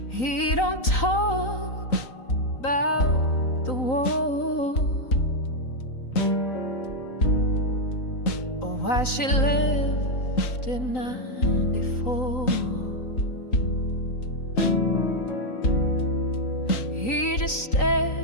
He don't talk about the war or why she left in '94. He just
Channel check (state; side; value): late; right; 3.9 ms